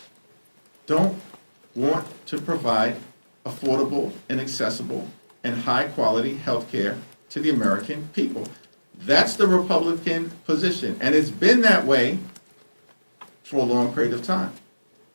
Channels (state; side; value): inverted; both; correlation -1.00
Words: don't want to provide affordable and accessible and high-quality health care to the American people. That's the Republican position, and it's been that way for a long period of time.